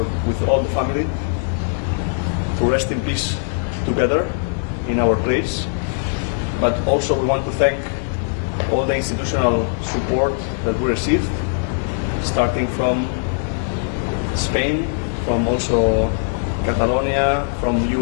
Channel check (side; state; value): right; silent; digital silence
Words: with all the family, to rest in peace together in our place. But also we want to thank all the institutional support that we received, starting from Spain, from also Catalonia, from